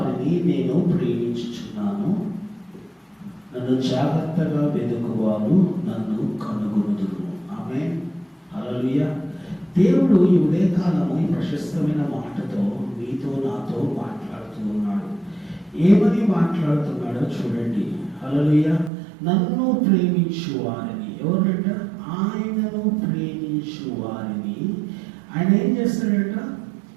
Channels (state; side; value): drops out; left; at 18.9 s